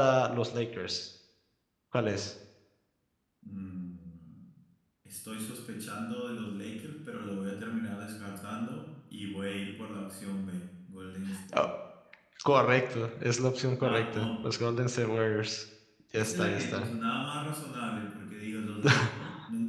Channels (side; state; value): both; identical; correlation 1.00